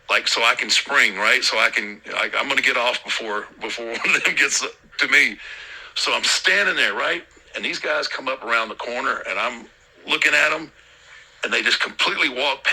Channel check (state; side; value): identical; both; correlation 1.00